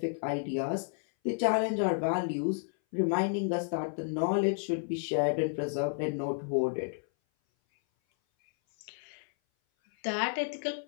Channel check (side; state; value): right; silent; 57 dB below the other